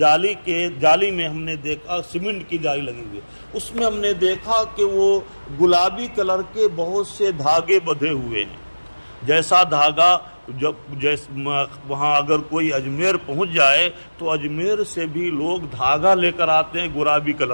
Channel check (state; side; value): inverted; both; correlation -1.00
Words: میں ہم نے دیکھا سیمنٹ کی جالی لگی ہوئی، اس میں ہم نے دیکھا کہ وہ گلابی کلر کے بہت سے دھاگے بندھے ہوئے ہیں، جیسا دھاگا وہاں اگر کوئی اجمیر پہنچ جائے تو اجمیر سے بھی لوگ دھاگا لے کر آتے ہیں گلابی